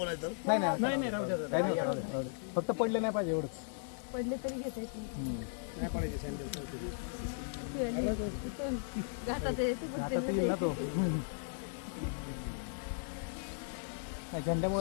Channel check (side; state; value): right; silent; digital silence